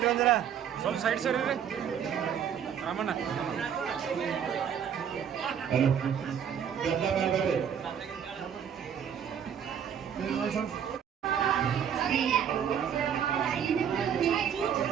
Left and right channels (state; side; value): quieter; left; 8.3 dB